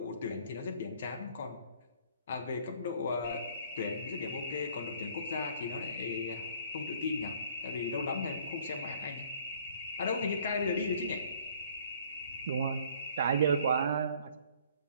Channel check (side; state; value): both; inverted; correlation -0.57